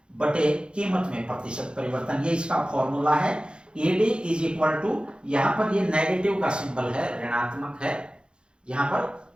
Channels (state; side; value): late; left; 0.053 ms